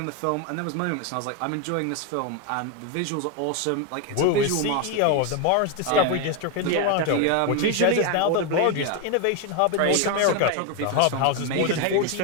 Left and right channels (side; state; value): both; different; correlation 0.02